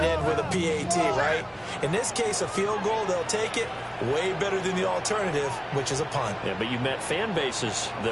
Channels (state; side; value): identical; both; correlation 1.00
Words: end with a PAT, right? In this case, a field goal, they'll take it. Way better than the alternative, which is a punt. Yeah, but you met fan bases